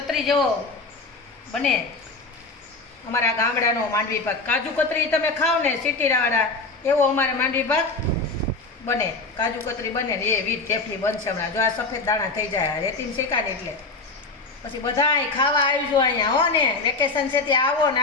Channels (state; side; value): quieter; right; 3.7 dB